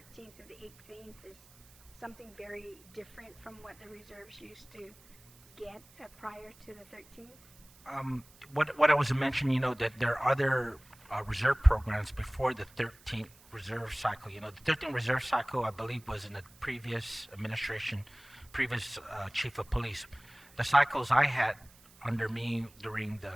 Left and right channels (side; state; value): right; noise; hiss, 26 dB below the sound